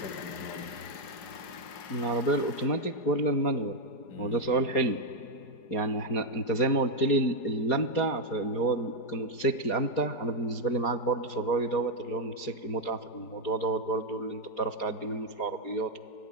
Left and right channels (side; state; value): right; late; 4.8 ms